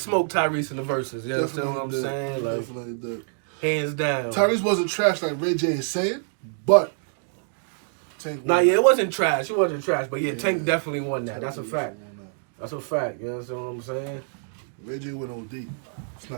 Tyrese in the verses. You understand what I'm saying? Like, definitely did. Hands down. Tyrese wasn't trash like Ray J is saying, but Tank. It wasn't trash. It wasn't trash. But yeah, Tank definitely won that. That's a fact. That's a fact. You understand what I'm saying? Ray J went OD. It's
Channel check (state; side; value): silent; left; digital silence